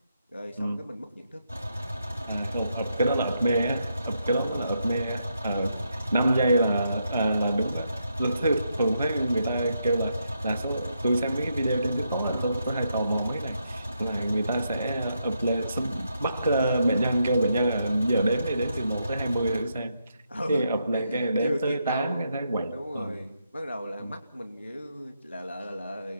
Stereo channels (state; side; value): inverted; both; correlation -0.81